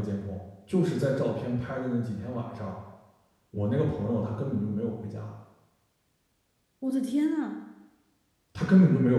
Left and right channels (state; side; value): identical; both; correlation 1.00